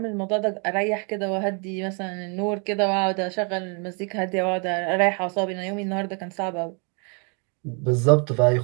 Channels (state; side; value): quieter; left; 37.3 dB